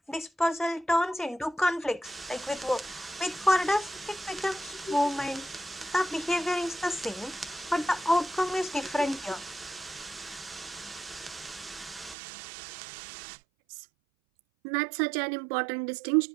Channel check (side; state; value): left; drops out; at 12.2 s